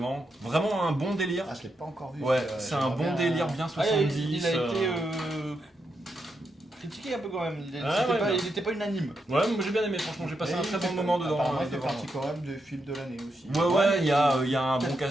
Vraiment un bon délire. Ah, je l'ai pas encore vu. Ouais, c'est un bon délire bien 70. il a été critiqué un peu quand même. Il était pas unanime. Ouais, moi j'ai bien aimé, franchement, j'ai passé un très bon moment dedans. Apparemment, il fait devant. partie quand même des films de l'année aussi. Ouais, il y a un bon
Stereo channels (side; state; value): both; normal; correlation 0.83